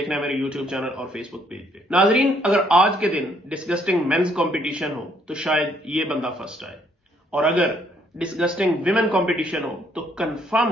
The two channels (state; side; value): normal; both; correlation 0.67